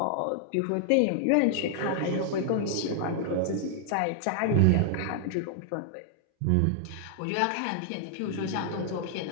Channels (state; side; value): different; both; correlation 0.00